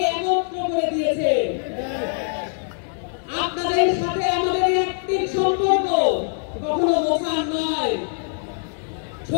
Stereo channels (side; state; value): right; silent; digital silence